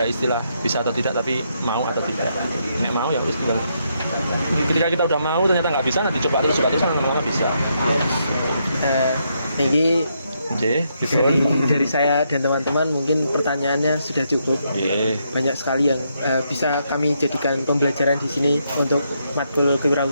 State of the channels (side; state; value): both; inverted; correlation -0.78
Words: istilah bisa atau tidak tapi mau atau tidak. Nek mau ya harus tinggal, ketika kita udah mau ternyata nggak bisa, nanti coba terus lama-lama bisa. Ini Gitu. dari saya dan teman-teman mungkin pertanyaannya sudah cukup. Banyak sekali yang bisa kami jadikan pembelajaran di sini untuk matkul